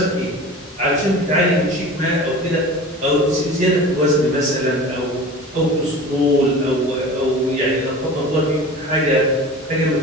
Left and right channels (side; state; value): both; normal; correlation 0.37